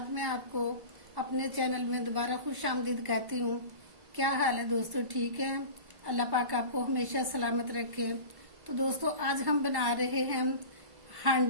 मैं आपको अपने चैनल में दोबारा खुश आमदीद कहती हूँ। क्या हाल है दोस्तों, ठीक है? अल्लाह पाक आपको हमेशा सलामत रखे। तो दोस्तों आज हम बना रहे हैं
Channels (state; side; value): late; left; 1.1 ms